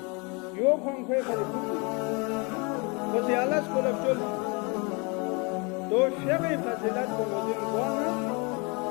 یو کھن کھوئے خری کھوئی خوشی اللہ سکولب چل تو شیخی فضیلت کو مدین کوانا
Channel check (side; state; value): right; quieter; 30.6 dB